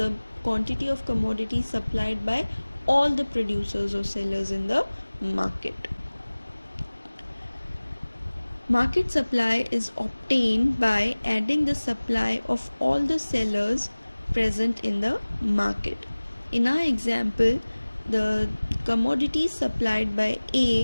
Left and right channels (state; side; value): inverted; both; correlation -1.00